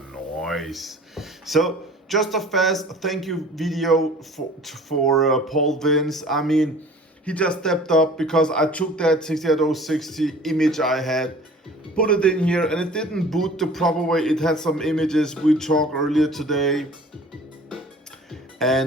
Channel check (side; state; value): both; normal; correlation 0.46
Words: nice. So, just a fast thank you video for Paul Vince. I mean, he just stepped up because I took that 68060 image I had, put it in here, and it didn't boot the proper way. It had some images we talked earlier today.